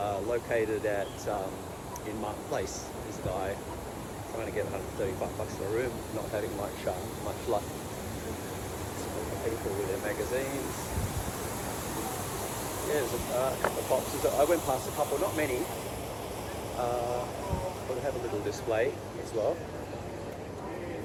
at in Martin Place. There's a guy trying to get $135 for a room, not having much luck. People with their magazines. Yeah, there's a couple of boxes. I went past a couple, not many. But have a little display as well.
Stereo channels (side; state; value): both; identical; correlation 1.00